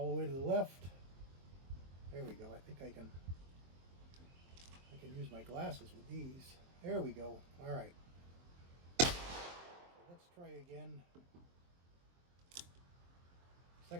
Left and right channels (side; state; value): left; late; 23 ms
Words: the way to the left. There we go. I think I can use my glasses with these. There we go. All right. So let's try again.